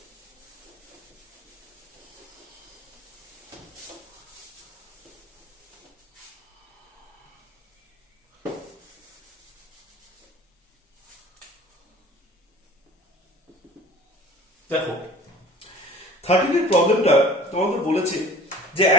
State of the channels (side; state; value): both; normal; correlation 0.45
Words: দেখো 13 এর প্রবলেমটা তোমাদের বলেছে যে